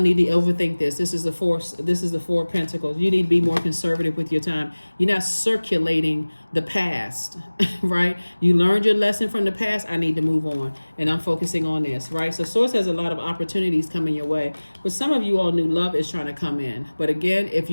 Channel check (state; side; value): inverted; both; correlation -1.00